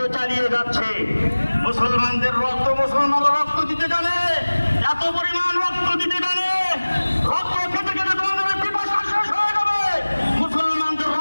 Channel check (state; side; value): inverted; both; correlation -1.00